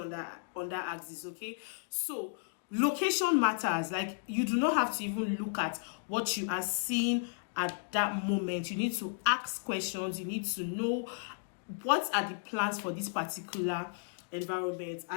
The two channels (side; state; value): right; silent; digital silence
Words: that axis. Okay, so location matters. Like, you do not have to even look at what you are seeing at that moment. You need to ask questions. You need to know what are the plans for this particular environment.